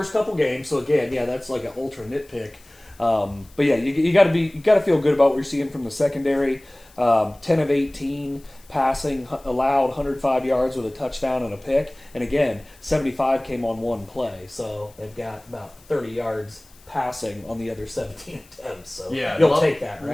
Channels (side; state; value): left; noise; hiss, 27 dB below the sound